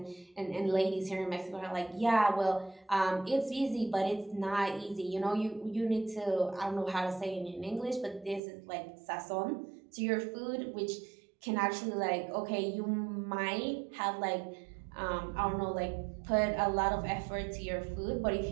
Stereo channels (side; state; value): left; drops out; at 8.4 s